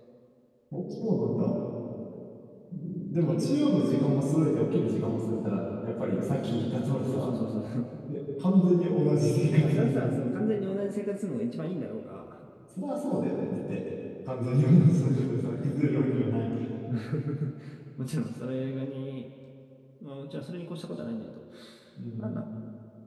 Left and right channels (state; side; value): identical; both; correlation 1.00